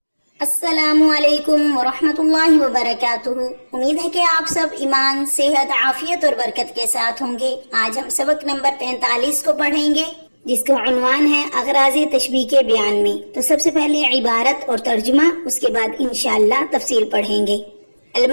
السلام علیکم ورحمۃ اللہ وبرکاتہ۔ امید ہے کہ آپ سب ایمان، صحت، عافیت اور برکت کے ساتھ ہوں گے۔ آج ہم سبق نمبر 45 کو پڑھیں گے، جس کا عنوان ہے اغراض تشبیہ کے بیان میں۔ تو سب سے پہلے عبارت اور ترجمہ، اس کے بعد انشاءاللہ تفصیل پڑھیں گے۔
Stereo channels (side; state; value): both; inverted; correlation -1.00